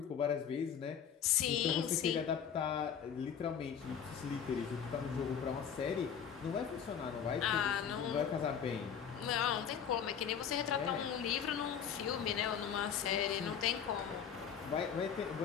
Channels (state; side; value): quieter; right; 7.9 dB